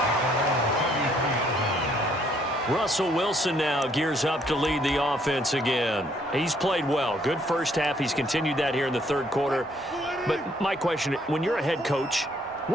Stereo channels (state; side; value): normal; both; correlation 0.67